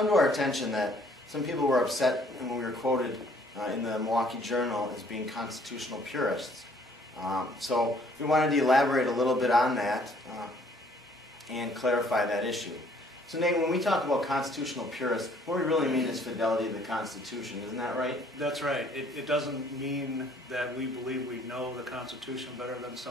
to our attention that some people were upset when we were quoted in the Milwaukee Journal as being constitutional purists. So we wanted to elaborate a little bit on that and clarify that issue. So Nate, when we talk about constitutional purists, what we really mean is fidelity to the Constitution, isn't that right? That's right. It doesn't mean that we believe we know the Constitution better than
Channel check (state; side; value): normal; both; correlation 0.60